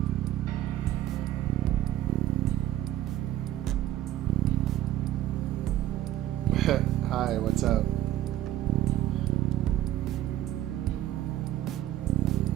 Hi, what's up?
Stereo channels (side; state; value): left; quieter; 13.2 dB